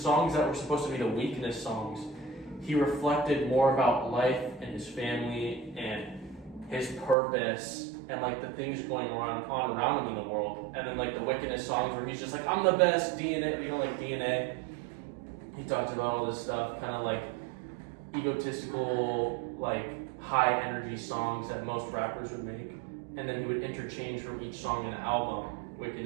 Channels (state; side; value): drops out; left; at 7.2 s